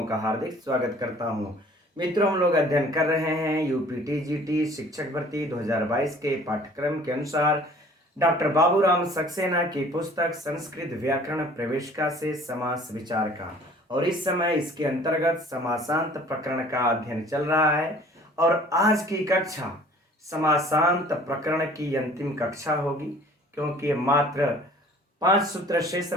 का हार्दिक स्वागत करता हूं। मित्रों, हम लोग अध्ययन कर रहे हैं यूपीटीजीटी शिक्षक भर्ती 2022 के पाठ्यक्रम के अनुसार डॉक्टर बाबूराम सक्सेना की पुस्तक संस्कृत व्याकरण प्रवेशिका से समास विचार का, और इस समय इसके अंतर्गत समासांत प्रकरण का अध्ययन चल रहा है। और आज की कक्षा समासांत प्रकरण की अंतिम कक्षा होगी, क्योंकि मात्र 5 सूत्र शेष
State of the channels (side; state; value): both; normal; correlation 0.51